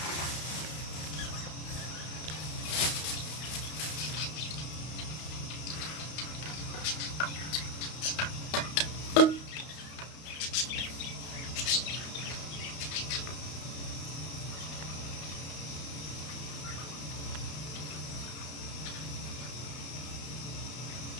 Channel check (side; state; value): right; late; 32 ms